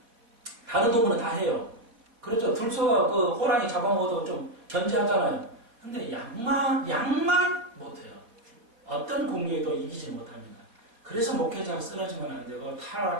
다른 동물은 다 해요. 그렇죠. 들소가 그 호랑이 잡아먹어도 좀 견제하잖아요. 근데 양만 못해요. 어떤 공격에도 이기지 못합니다. 그래서 목회자가 쓰러지면 안 되고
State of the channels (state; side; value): late; left; 4.3 ms